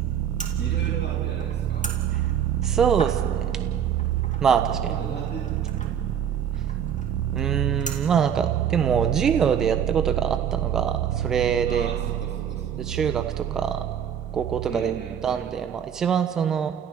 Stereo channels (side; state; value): left; quieter; 8.6 dB